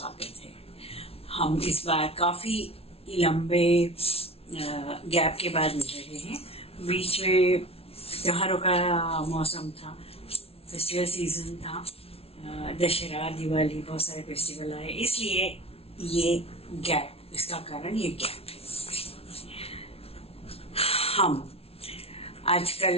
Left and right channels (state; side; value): late; right; 0.29 ms